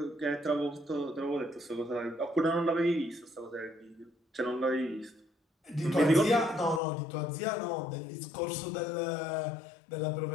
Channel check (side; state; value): right; drops out; at 6.8 s